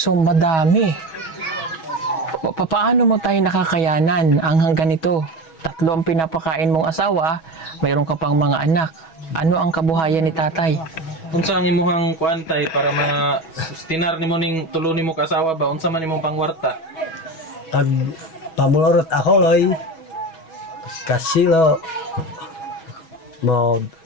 madami. Paano mo tayo nakakayanan ang ganito? 3 ang pinapakain mong asawa, mayroon ka pang mga anak. Ano ang kabuhayan ni tatay? Unsa ang imuhang kuantay para ma-sustinar nimo ning tulo nimo ka asawa ba? Unsa man imong pangwarta? Pag pamulorot ako loy, kasilo, mo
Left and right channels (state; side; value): late; right; 6.2 ms